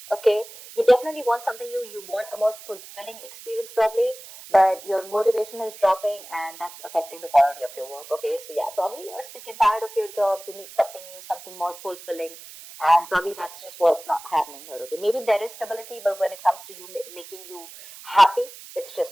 okay, you definitely want something new. You want a more fulfilling experience, probably, but your motivation is dropping, and that's affecting the quality of your work. Okay, so yeah, probably you're sick and tired of your job. You need something new, something more fulfilling, and probably that's just what's not happening here. Okay, maybe there is stability, but when it comes to you making you happy, it's just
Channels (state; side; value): noise; right; hiss, 16 dB below the sound